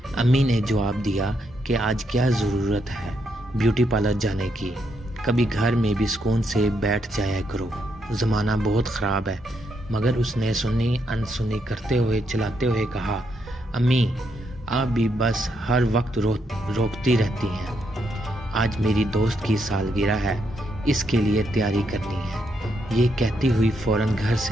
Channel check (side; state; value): both; normal; correlation 0.78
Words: امی نے جواب دیا کہ آج کیا ضرورت ہے بیوٹی پارلر جانے کی، کبھی گھر میں بھی سکون سے بیٹھ جایا کرو، زمانہ بہت خراب ہے۔ مگر اس نے سنی انسنی کرتے ہوئے چلاتے ہوئے کہا، امی آپ بھی بس ہر وقت روکتی رہتی ہیں، آج میری دوست کی سالگرہ ہے، اس کے لیے تیاری کرنی ہے۔ یہ کہتی ہوئی فوراً گھر